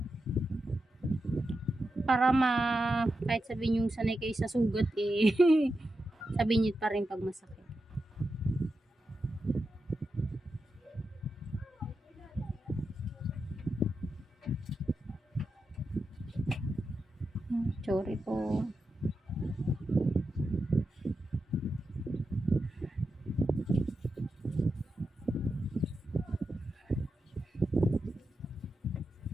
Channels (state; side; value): normal; both; correlation 0.89